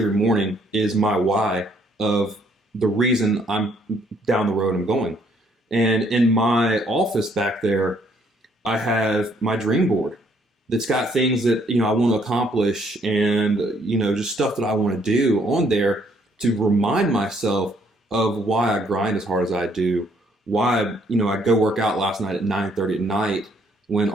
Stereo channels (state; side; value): normal; both; correlation 0.67